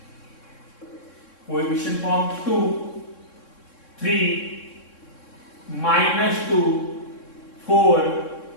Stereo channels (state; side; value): late; right; 3.6 ms